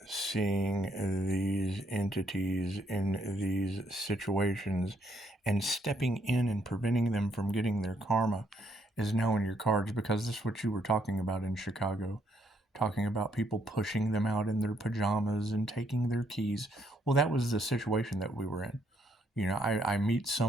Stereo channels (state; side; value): normal; both; correlation 0.71